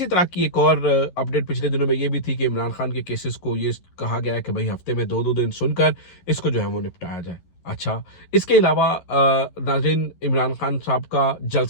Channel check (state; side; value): late; right; 11 ms